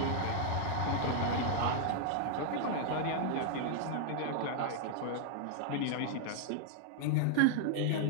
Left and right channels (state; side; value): different; both; correlation 0.00